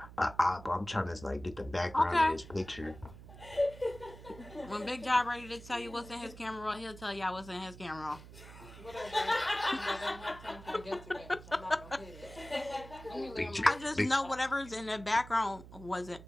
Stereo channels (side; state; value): right; noise; hum, 16 dB below the sound